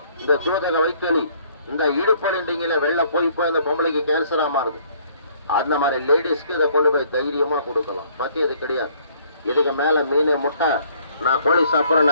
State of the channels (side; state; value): both; inverted; correlation -0.61